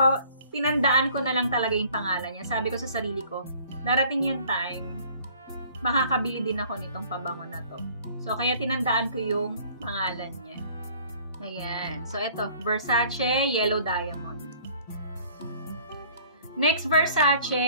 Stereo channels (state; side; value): inverted; both; correlation -0.54